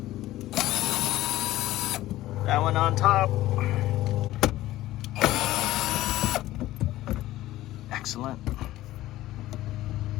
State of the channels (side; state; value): right; quieter; 15.7 dB